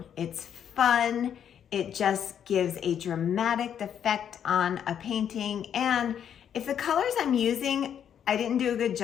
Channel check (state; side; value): quieter; right; 8.9 dB